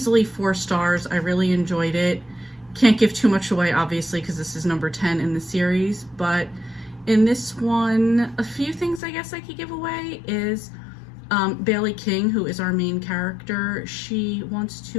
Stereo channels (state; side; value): drops out; right; at 9.0 s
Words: 4 stars. I really enjoyed it. Can't give too much away, obviously, because this is number 10 in the series, but in this one, a few things I guess I could give away is Bailey King, who is our main character, she wants